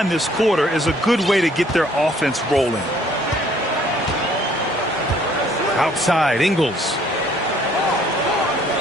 this quarter is a good way to get their offense rolling. Outside, Ingles.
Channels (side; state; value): both; normal; correlation 0.61